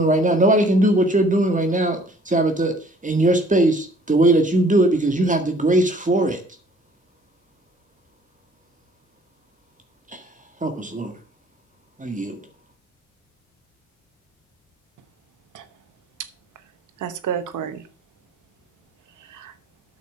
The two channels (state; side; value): normal; both; correlation 0.56